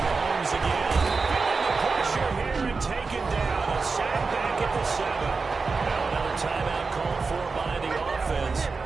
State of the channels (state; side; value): quieter; left; 4.4 dB